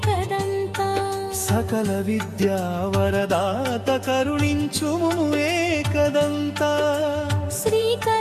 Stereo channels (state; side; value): identical; both; correlation 1.00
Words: సకల విద్యా వరదాత కరుణించుము ఏకదంత